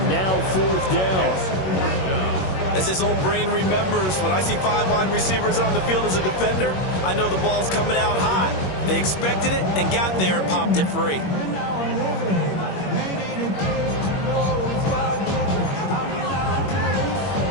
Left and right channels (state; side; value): late; right; 21 ms